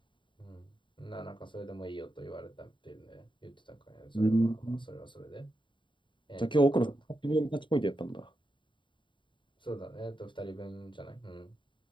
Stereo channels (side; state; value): right; late; 0.23 ms